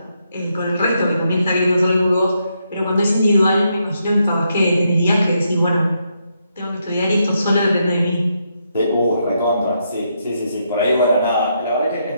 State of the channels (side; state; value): both; inverted; correlation -0.79